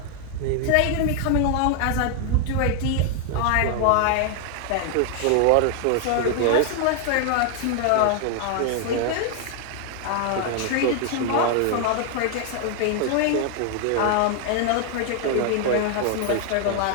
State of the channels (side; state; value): both; different; correlation 0.00